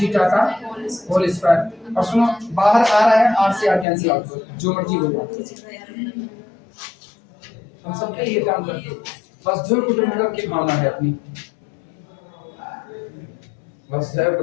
का होल स्क्वायर, और सुनो बाहर आ रहा है, आर से आर कैंसिल आउट हो, जो मर्जी हो जाए, हम सबके ये काम करते हैं, वसुधैव कुटुंबकम की भावना है अपनी, वसुधैव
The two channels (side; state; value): right; drops out; at 3.9 s